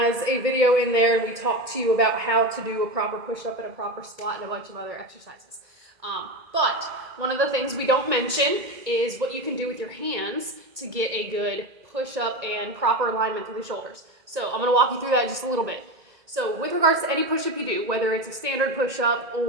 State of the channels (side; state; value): left; late; 1.8 ms